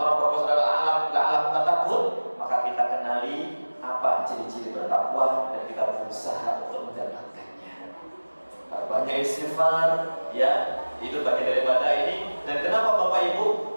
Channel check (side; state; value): both; inverted; correlation -1.00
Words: berpuasa adalah alam takut, maka kita kenali apa ciri-ciri bertakwa dan kita berusaha untuk mendapatkannya. Banyak istighfar, ya, itu bagian daripada ini. Dan kenapa Bapak Ibu,